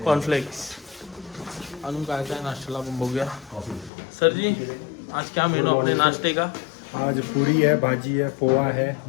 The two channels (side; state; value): right; drops out; at 3.9 s